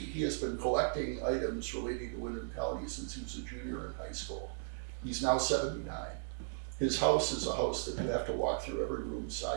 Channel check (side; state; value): left; silent; digital silence